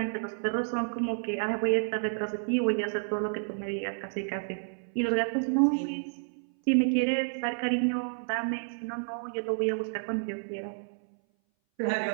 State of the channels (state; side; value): silent; left; 58 dB below the other